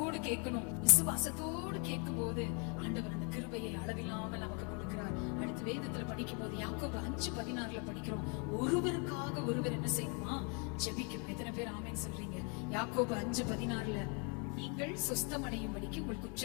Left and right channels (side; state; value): right; quieter; 35.8 dB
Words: கேட்கணும். விசுவாசத்தோடு கேட்கும் போது ஆண்டவர் அந்த கிருபையை அளவில்லாமல் நமக்கு கொடுக்கிறார். அடுத்து வேதத்துல படிக்கும் போது யாக்கோபு 5:16 படிக்கிறோம். ஒருவருக்காக ஒருவர் என்ன செய்யணுமா? ஜெபிக்கணும். எத்தனை பேர் ஆமென் சொல்றீங்க? யாக்கோபு 5:16 நீங்கள் சொஸ்தமடையும்படிக்கு உங்கள்